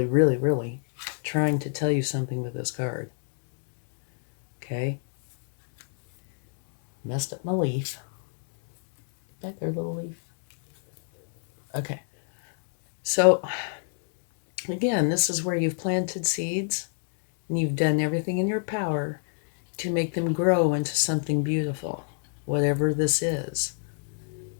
really, really trying to tell you something with this card. Okay? Messed up my leaf. Back there, little leaf. Okay. So, again, this is where you've planted seeds and you've done everything in your power to make them grow into something beautiful, whatever this is.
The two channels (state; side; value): silent; right; digital silence